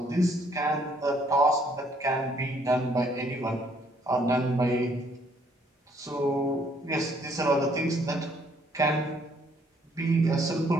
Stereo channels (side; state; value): both; normal; correlation 0.66